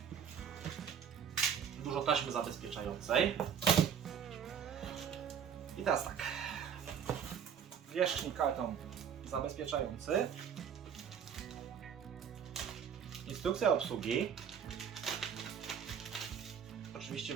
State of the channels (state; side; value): quieter; left; 7.8 dB